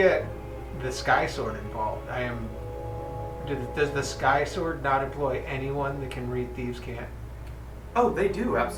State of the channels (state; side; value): identical; both; correlation 1.00